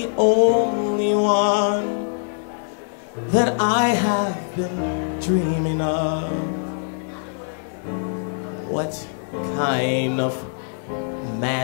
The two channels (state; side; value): silent; right; digital silence